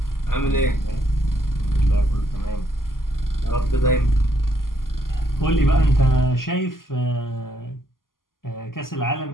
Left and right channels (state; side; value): late; right; 0.91 ms